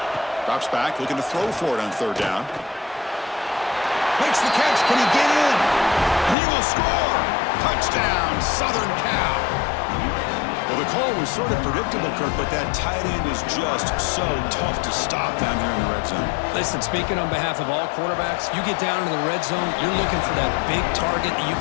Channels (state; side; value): drops out; right; at 6.4 s